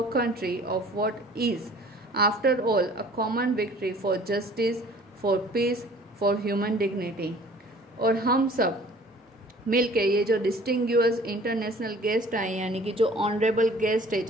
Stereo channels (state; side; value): normal; both; correlation 0.50